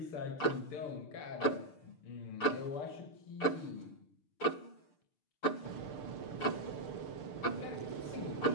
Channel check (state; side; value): late; right; 6.7 ms